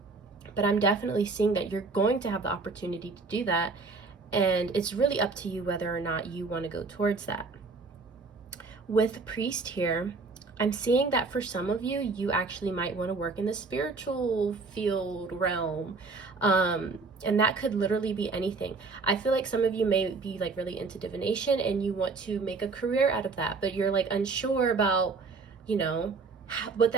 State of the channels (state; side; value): quieter; left; 4.1 dB